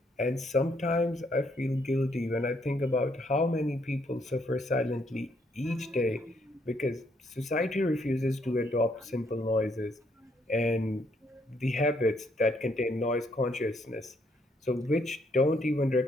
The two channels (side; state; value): both; normal; correlation 0.71